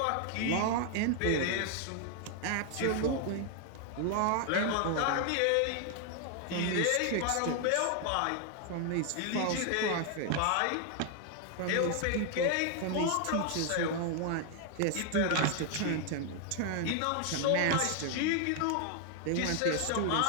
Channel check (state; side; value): different; both; correlation 0.00